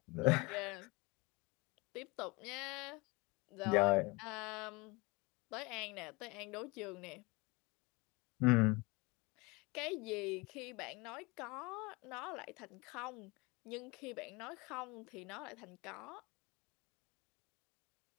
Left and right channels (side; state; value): right; quieter; 25.9 dB